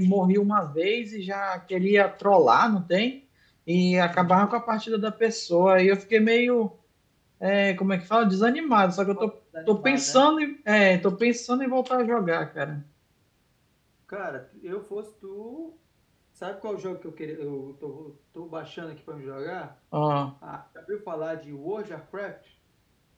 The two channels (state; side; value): identical; both; correlation 1.00